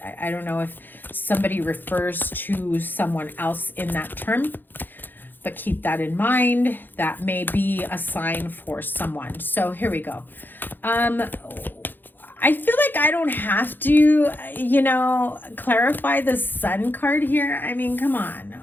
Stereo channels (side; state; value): right; late; 0.091 ms